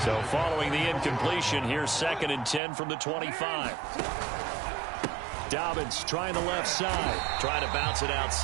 So following the incompletion, here's 2nd and 10 from the 25. Dobbins trying the left side. Trying to bounce it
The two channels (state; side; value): drops out; left; at 2.6 s